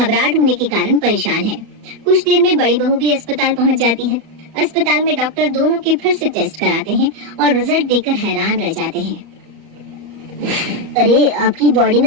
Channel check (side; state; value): left; late; 34 ms